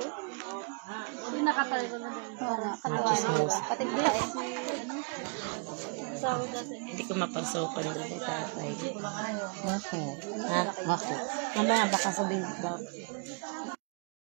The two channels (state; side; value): quieter; left; 38.5 dB